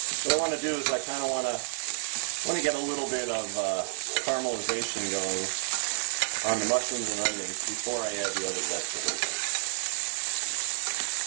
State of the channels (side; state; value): left; silent; 58 dB below the other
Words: What I want to do is I kind of want to get a little bit of caramelization going on the mushrooms and onions before I add the other vegetables.